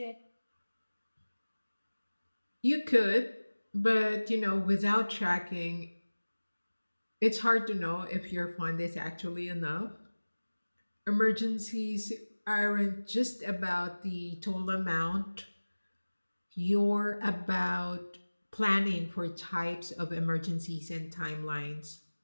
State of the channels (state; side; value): inverted; both; correlation -1.00